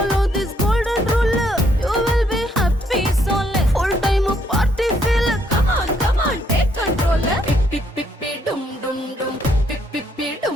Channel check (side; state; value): both; normal; correlation 0.71